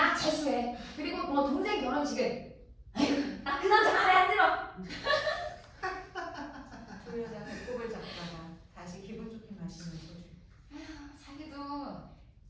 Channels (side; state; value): both; identical; correlation 1.00